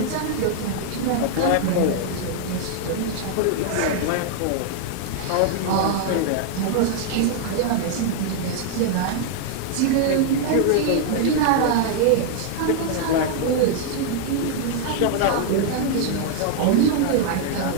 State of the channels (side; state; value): both; different; correlation 0.00